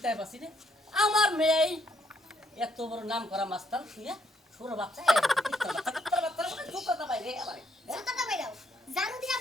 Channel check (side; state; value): both; normal; correlation 0.72